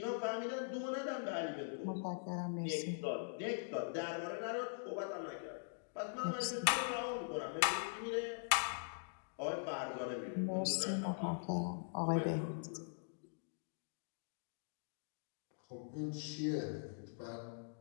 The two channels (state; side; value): silent; right; digital silence